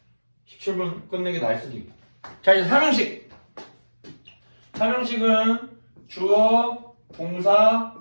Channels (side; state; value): both; inverted; correlation -1.00